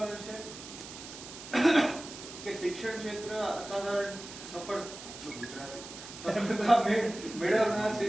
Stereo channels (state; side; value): noise; right; hiss, 13 dB below the sound